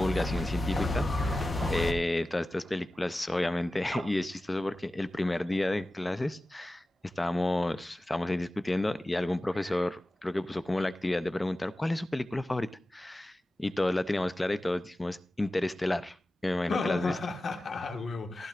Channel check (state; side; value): normal; both; correlation 0.95